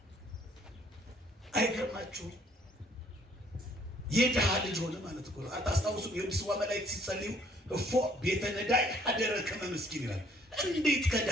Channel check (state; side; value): normal; both; correlation 0.63